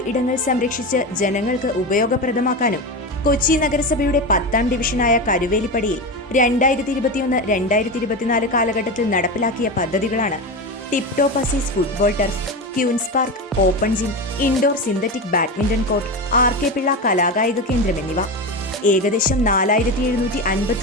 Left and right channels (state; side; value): normal; both; correlation 0.20